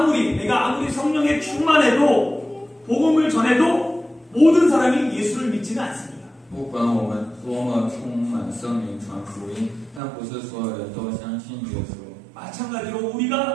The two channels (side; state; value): left; drops out; at 10.0 s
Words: 성령에 충만해도 복음을 전해도 모든 사람이 예수를 믿지는 않습니다. 不管我们多么充满圣灵传福音，但不是所有人都相信耶稣。 마찬가지로